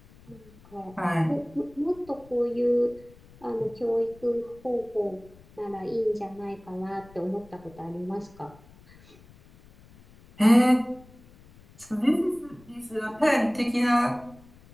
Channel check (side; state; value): left; noise; rumble, 24 dB below the sound